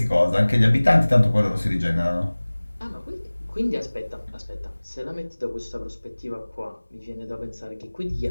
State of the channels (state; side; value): inverted; both; correlation -1.00